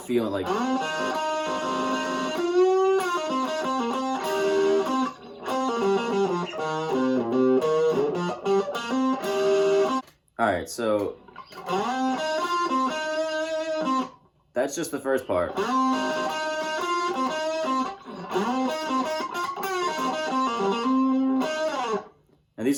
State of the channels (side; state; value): both; identical; correlation 1.00